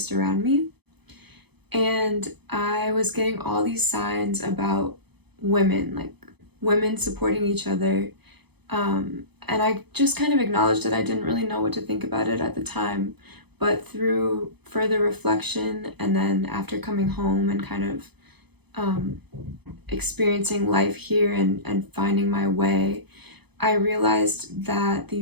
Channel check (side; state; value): left; late; 0.98 ms